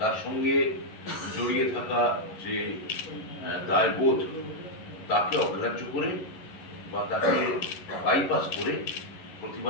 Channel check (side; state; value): right; late; 11 ms